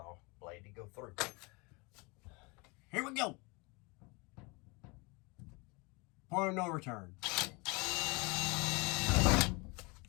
blade to go through. Here we go. Point of no return.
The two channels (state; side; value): quieter; right; 28.0 dB